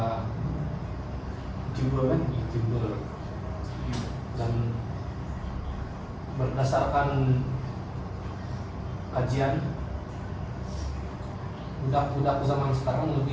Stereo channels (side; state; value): both; identical; correlation 1.00